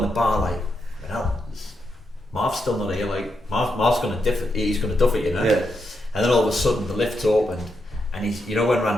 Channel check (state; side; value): normal; both; correlation 0.83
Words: the bar, like, you know, Marv's still not here, like, Marv's going to he's going to duff it, you know. Yeah. And then all of a sudden the lift's opened, and he's, you know, when